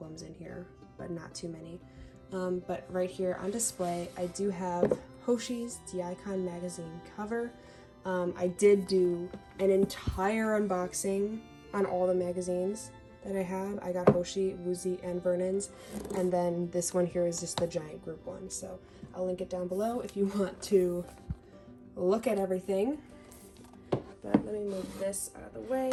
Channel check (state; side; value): identical; both; correlation 1.00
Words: in here, but not too many. But right here on display, I do have Hoshi's The Icon magazine cover. I did do an entire unboxing on all the magazines that I have. I got Hoshi, Woozy, and Vernon's, and then this one here is just the giant group one. So I'll link it down below if you want to look at everything. But let me move this out of the